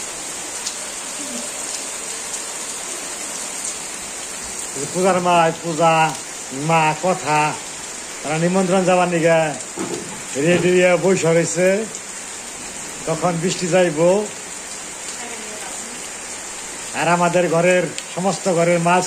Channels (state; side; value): identical; both; correlation 1.00